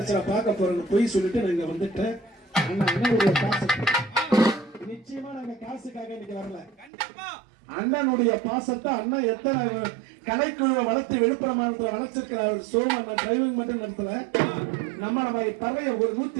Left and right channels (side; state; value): left; drops out; at 6.9 s